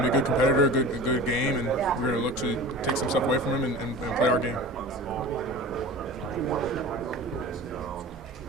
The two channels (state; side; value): normal; both; correlation 0.36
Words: competitor, a good game, and we're gonna look to take some stuff away from him and play our game.